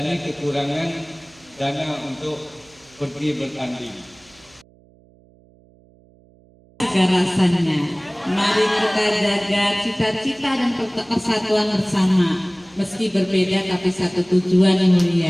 ini kekurangan dana untuk pergi bertanding. Rasanya, mari kita jaga cita-cita dan persatuan bersama, meski berbeda tapi satu tujuan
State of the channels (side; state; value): right; noise; hum, 29 dB below the sound